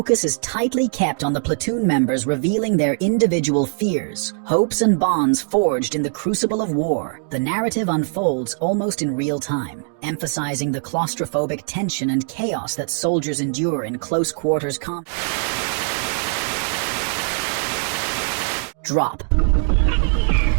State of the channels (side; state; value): left; silent; 65 dB below the other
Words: is tightly kept on the platoon members revealing their individual fears, hopes, and bonds forged in the crucible of war. The narrative unfolds almost in real time, emphasizing the claustrophobic tension and chaos that soldiers endure in close quarters combat. Drop.